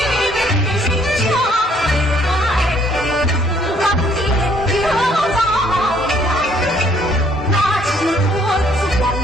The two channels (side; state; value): both; normal; correlation 0.64